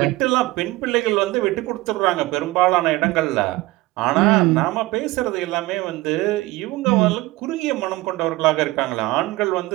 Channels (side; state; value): left; quieter; 19.9 dB